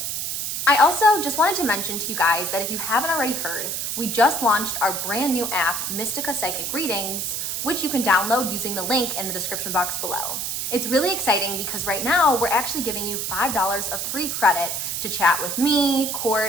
I also just wanted to mention to you guys that if you haven't already heard, we just launched our brand new app, Mystica Psychic Readings, which you can download using the link in the description box below. It's really exciting because right now we're actually giving you $5 of free credit to chat with me,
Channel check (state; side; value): noise; right; hiss, 2 dB below the sound